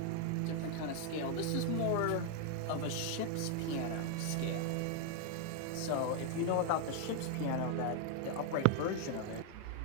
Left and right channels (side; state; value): both; different; correlation 0.00